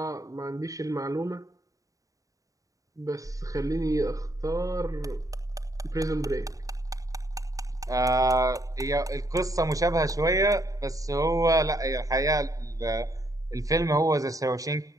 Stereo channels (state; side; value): late; left; 0.16 ms